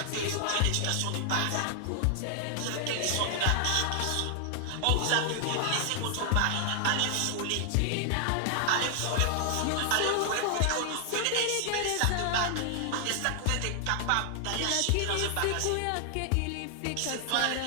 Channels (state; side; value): different; both; correlation 0.00